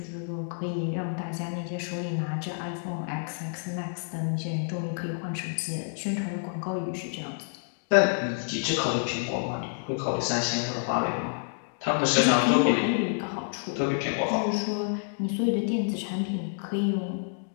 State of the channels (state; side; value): silent; right; digital silence